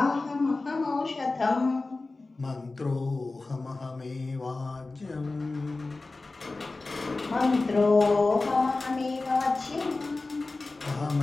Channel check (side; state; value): right; quieter; 3.4 dB